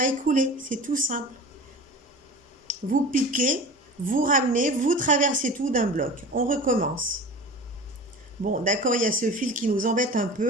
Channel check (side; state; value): both; normal; correlation 0.35